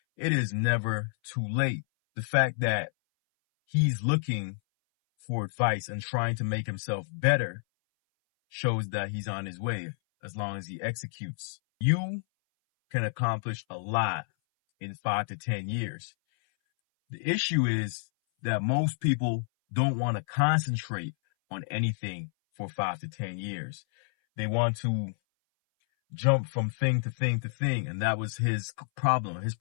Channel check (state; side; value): silent; right; 58 dB below the other